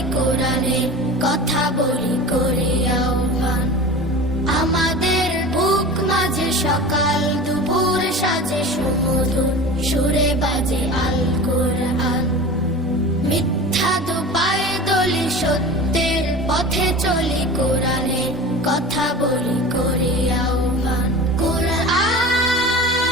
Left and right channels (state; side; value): normal; both; correlation 0.34